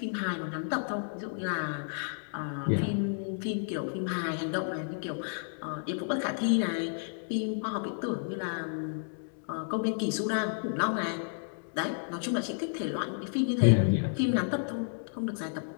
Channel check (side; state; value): right; silent; digital silence